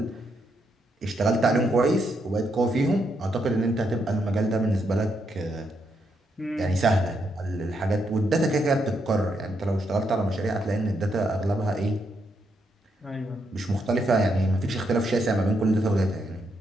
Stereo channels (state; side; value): normal; both; correlation 0.79